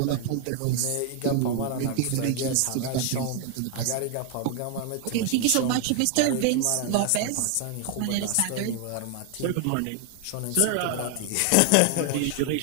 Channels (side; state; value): both; different; correlation 0.00